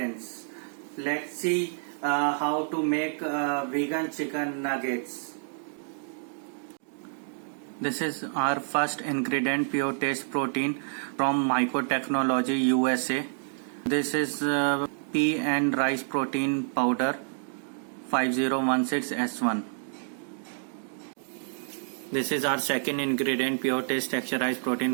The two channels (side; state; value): left; silent; digital silence